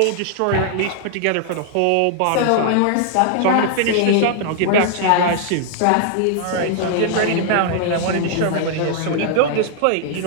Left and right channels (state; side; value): different; both; correlation -0.01